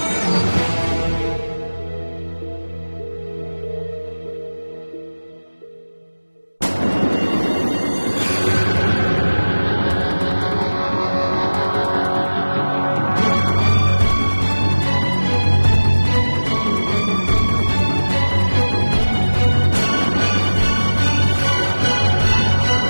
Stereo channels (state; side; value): inverted; both; correlation -1.00